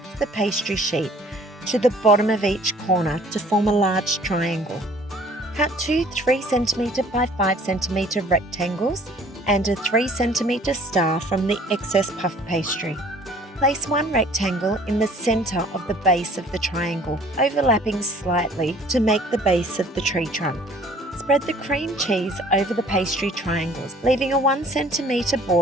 of the pastry sheet to the bottom of each corner to form a large triangle. Cut 2 3cm by 5cm rectangles and a 3cm star from the excess puff pastry. Place 1 rectangle in the centre of the base of the triangle, overlapping slightly to make the base of the tree trunk. Spread the cream cheese over the pastry triangles, leaving a 1cm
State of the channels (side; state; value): both; normal; correlation 0.54